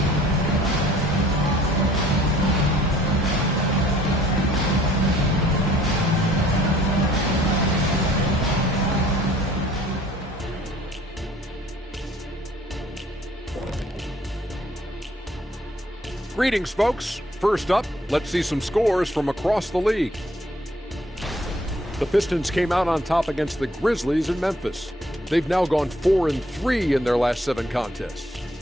Greetings, folks. First up, let's see some scores from across the league. The Pistons came out on top against the Grizzlies in Memphis. They've now gone 4-3 in their last 7 contests.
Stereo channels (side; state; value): both; normal; correlation 0.59